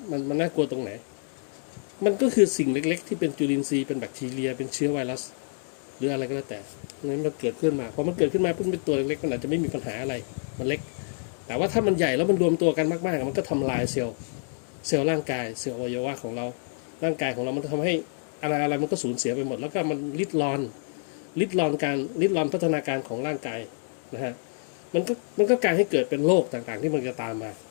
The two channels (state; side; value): silent; right; 60 dB below the other